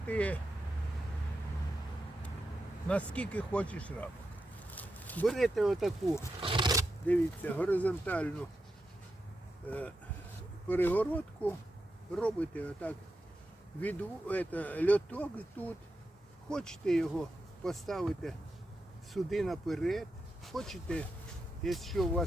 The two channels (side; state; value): both; normal; correlation 0.88